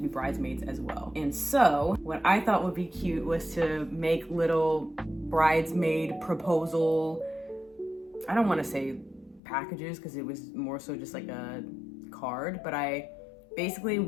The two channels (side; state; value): right; drops out; at 9.4 s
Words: bridesmaids as well. And so what I thought would be cute was to make little bridesmaid proposal, I don't want to say packages because it was more so just like a card, but I basically